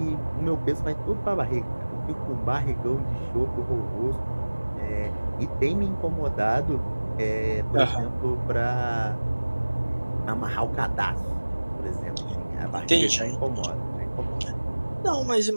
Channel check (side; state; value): both; inverted; correlation -1.00